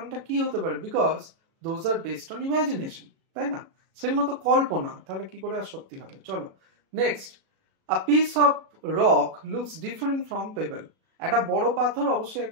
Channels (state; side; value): late; left; 37 ms